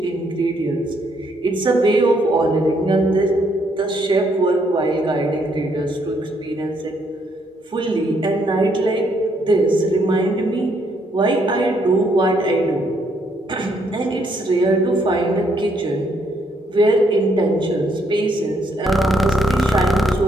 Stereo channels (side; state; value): both; normal; correlation 0.72